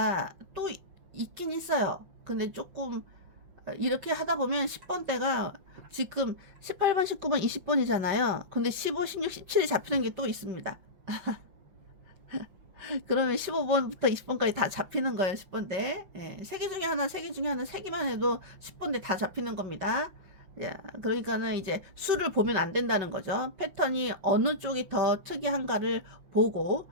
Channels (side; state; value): left; late; 5.6 ms